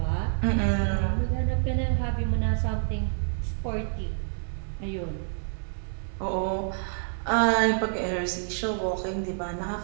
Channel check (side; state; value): left; silent; 59 dB below the other